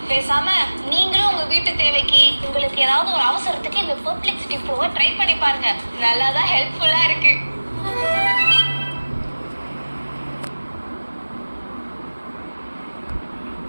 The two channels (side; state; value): both; inverted; correlation -1.00